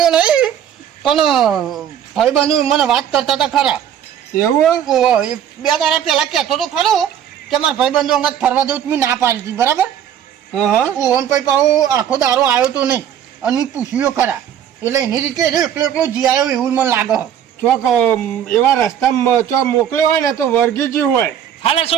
નહીં પણ ભાઈબંધુ મને વાત કરતા હતા ખરા એવું ઓહો, એ 2 દાડા પહેલા કહેતો તો ખરો કે મારા ભાઈબંધુ અંગત ફરવા દઉં મેં ના પાડી હતી બરાબર હા હા ઓહો ને પછી પાછો આખો દારો આવ્યો તો નહીં અને મેં પૂછ્યો ખરા એટલે એની રીતે એકલો એકલો જી આવ્યો એવું મને લાગે ચોક એવા રસ્તામાં ચોક મોકલ્યો હોય ને તો વર્ગીજી હોય હાલે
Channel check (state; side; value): quieter; left; 9.6 dB